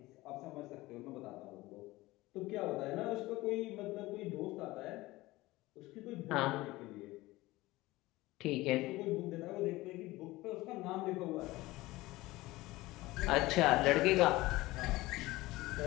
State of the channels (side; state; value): right; quieter; 19.3 dB